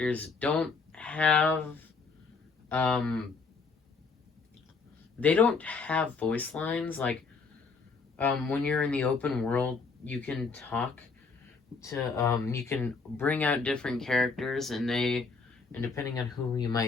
don't have, they don't have voice lines. Like, when you're in the open world, you can talk to, you can bring out different characters, and depending on who you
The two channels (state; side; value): quieter; right; 4.7 dB